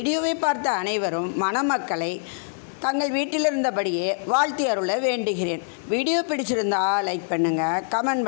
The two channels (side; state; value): right; silent; digital silence